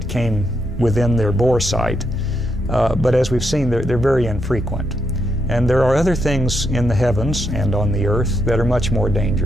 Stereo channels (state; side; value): normal; both; correlation 0.81